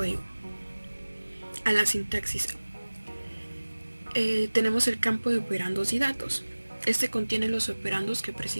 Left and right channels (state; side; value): inverted; both; correlation -1.00